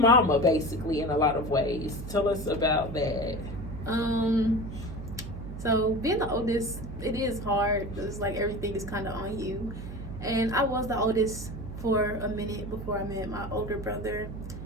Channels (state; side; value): noise; right; hum, 9 dB below the sound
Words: basically in a lot of ways. Tell us about that. So being the oldest, it is hard. It's like everything is kind of on you. And I was the oldest for a minute before I met my older brother.